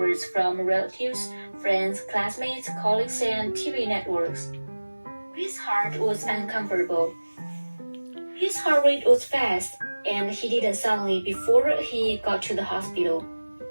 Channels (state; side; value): inverted; both; correlation -1.00